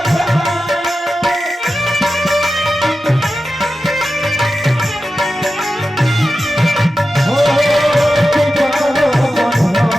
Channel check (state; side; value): normal; both; correlation 0.92